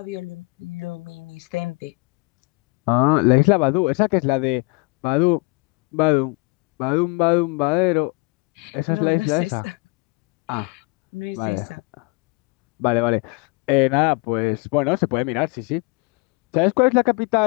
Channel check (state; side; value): quieter; right; 27.2 dB